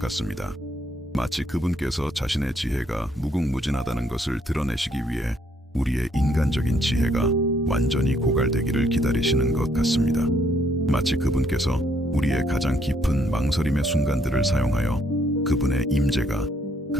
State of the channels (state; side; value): normal; both; correlation 0.70